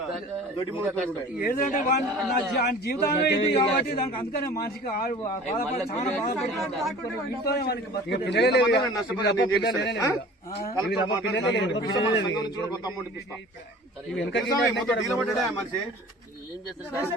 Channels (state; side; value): normal; both; correlation 0.44